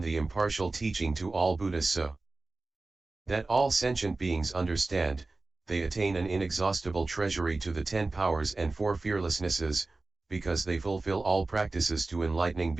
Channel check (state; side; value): quieter; left; 3.4 dB